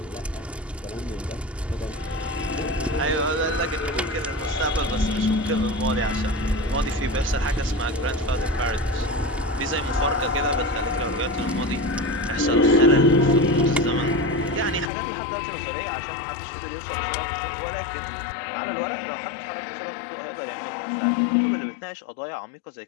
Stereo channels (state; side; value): drops out; right; at 14.9 s